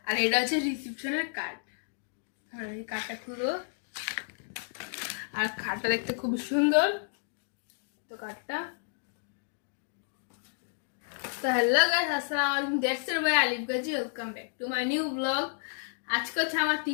আর এটা হচ্ছে রিসিপশনের কার্ড। আর এই কার্ডটা খুলো। আর কার্ডটা দেখতে খুব সুন্দর। তো কার্ডটা তো হ্যালো গাইস, আসসালামু আলাইকুম। That's it by Alif Gazi. Welcome back to my new blog. আজকে হচ্ছে আমার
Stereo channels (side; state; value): right; silent; digital silence